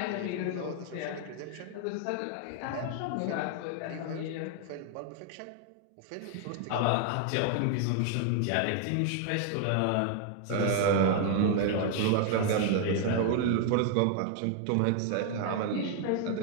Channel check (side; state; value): both; different; correlation 0.00